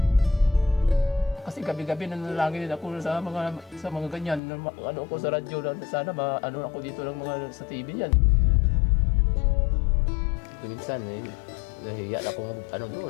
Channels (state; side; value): drops out; right; at 4.4 s